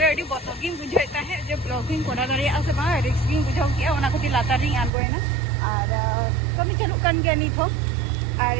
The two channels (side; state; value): left; drops out; at 4.9 s